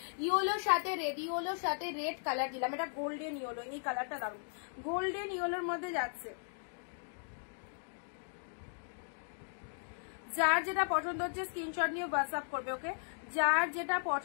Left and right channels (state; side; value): silent; right; digital silence